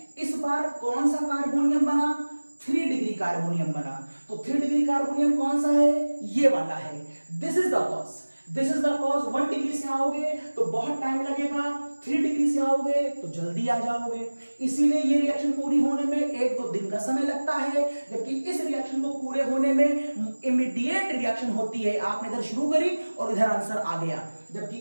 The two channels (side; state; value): both; inverted; correlation -1.00